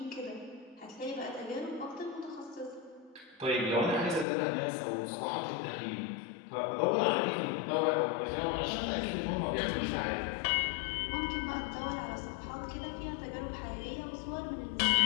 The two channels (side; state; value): right; drops out; at 4.2 s